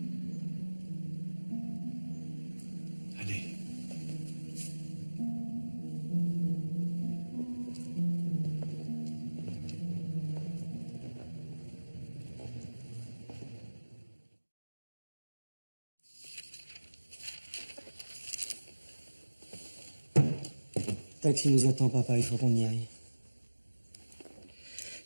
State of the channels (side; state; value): both; inverted; correlation -1.00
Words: Taxi nous attend, papa, il faut qu'on y aille.